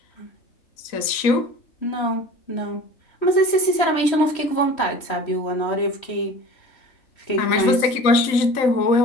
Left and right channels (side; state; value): right; late; 3.1 ms